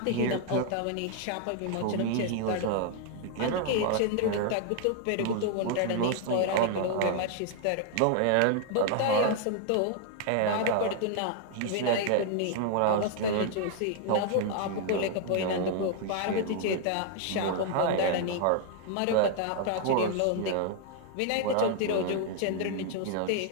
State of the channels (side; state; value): both; different; correlation 0.00